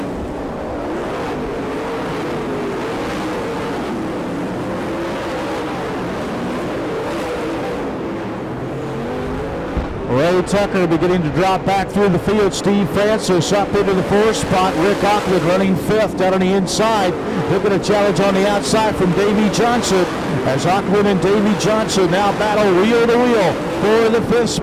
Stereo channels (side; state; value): both; identical; correlation 1.00